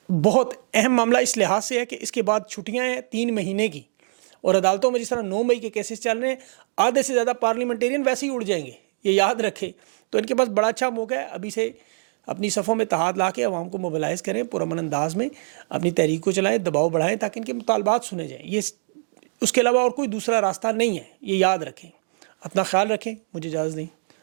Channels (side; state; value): left; silent; digital silence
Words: بہت اہم معاملہ اس لحاظ سے ہے کہ اس کے بعد چھٹیاں ہیں 3 مہینے کی، اور عدالتوں میں جس طرح 9 مئی کے کیسز چل رہے ہیں، آدھے سے زیادہ پارلیمنٹیرین ویسے ہی اڑ جائیں گے، یہ یاد رکھیں، تو ان کے پاس بڑا اچھا موقع ہے ابھی سے اپنی صفوں میں اتحاد لا کے عوام کو موبلائز کریں، پرامن انداز میں اپنی تحریک کو چلائیں، دباؤ بڑھائیں تاکہ ان کے مطالبات سنے جائیں، یہ اس کے علاوہ اور کوئی دوسرا راستہ نہیں ہے، یہ یاد رکھیں۔ اپنا خیال رکھیں، مجھے اجازت دیں،